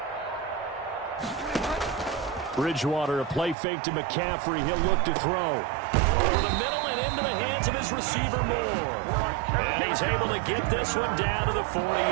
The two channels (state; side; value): drops out; left; at 3.6 s